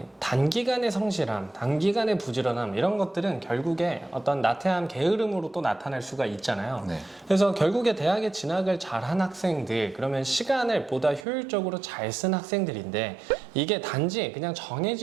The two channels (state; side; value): drops out; left; at 11.2 s